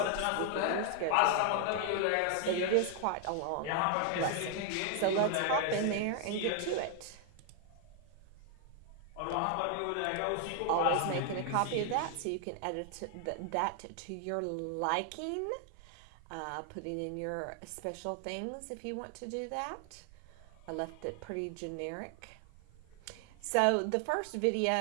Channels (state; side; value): different; both; correlation 0.00